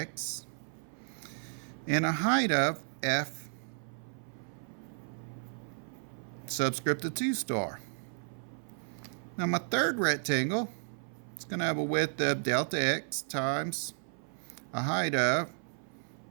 and a height of f subscript of 2 star. Now my third rectangle, it's going to have a width of delta x times a height of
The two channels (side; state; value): left; silent; 55 dB below the other